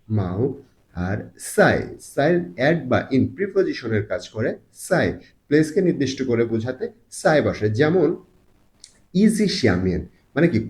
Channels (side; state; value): both; identical; correlation 1.00